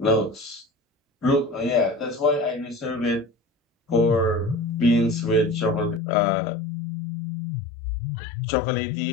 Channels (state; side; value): drops out; right; at 6.0 s